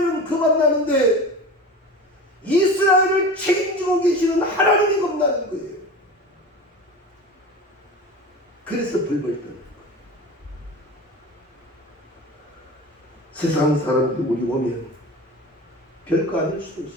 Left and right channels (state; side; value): normal; both; correlation 0.32